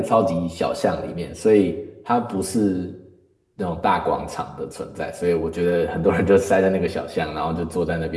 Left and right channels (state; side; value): identical; both; correlation 1.00